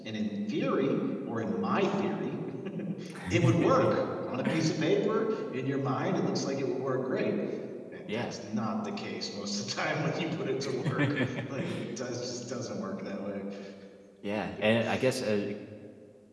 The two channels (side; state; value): both; identical; correlation 1.00